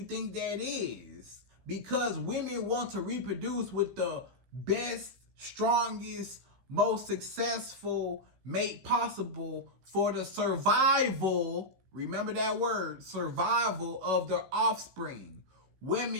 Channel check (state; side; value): late; left; 16 ms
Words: think that is? Because women want to reproduce with the best, strongest, most successful mate possible for the survival, remember that word, survival of their offspring.